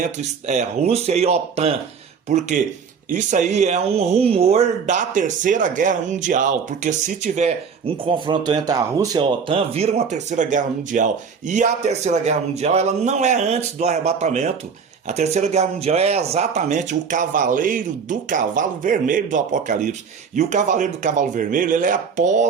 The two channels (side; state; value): left; quieter; 6.1 dB